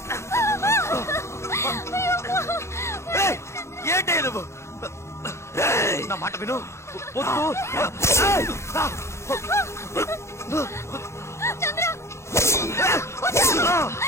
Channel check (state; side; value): late; right; 0.13 ms